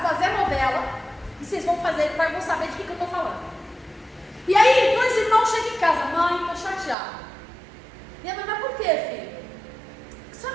fazer a novela, e vocês vão saber de que eu estou falando. E aí, dois irmãos chegam em casa, mãe, estou chateada. E a mãe, mas por quê, filho? A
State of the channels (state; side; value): drops out; left; at 7.0 s